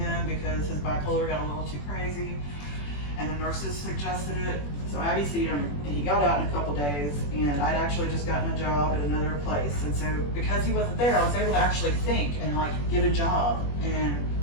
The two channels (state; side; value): late; right; 21 ms